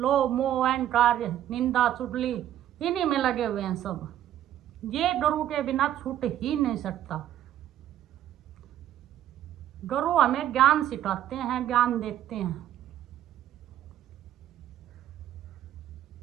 मोह अहंकार निंदा चुगली इन्हीं में लगे हुए हैं सब। ये गरु के बिना छूट ही नहीं सकता। गरु हमें ज्ञान सिखाते हैं, ज्ञान देते हैं।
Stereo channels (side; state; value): left; quieter; 11.7 dB